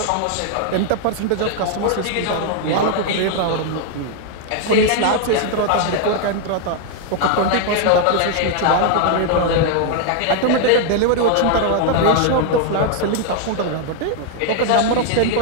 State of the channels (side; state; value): both; different; correlation 0.00